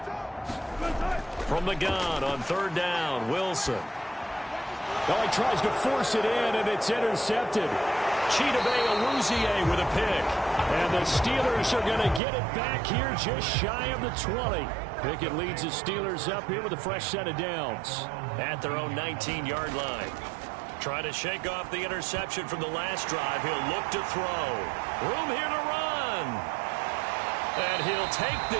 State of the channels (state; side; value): drops out; left; at 12.2 s